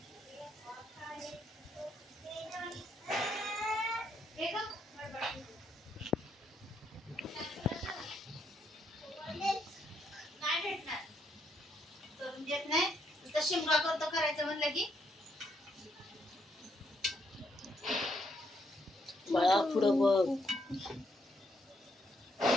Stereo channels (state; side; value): normal; both; correlation 0.75